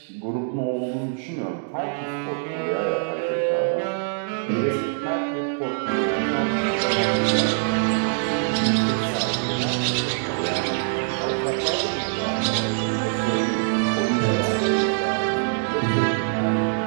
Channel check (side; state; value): left; silent; digital silence